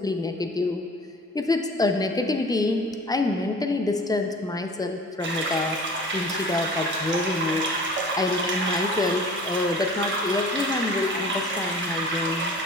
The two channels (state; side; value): normal; both; correlation 0.44